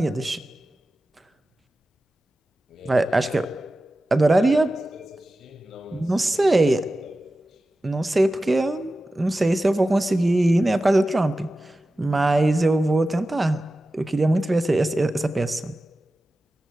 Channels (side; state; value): both; normal; correlation 0.94